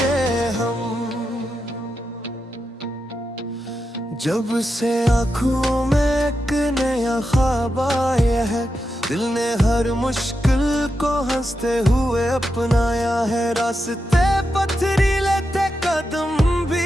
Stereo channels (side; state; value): both; normal; correlation 0.87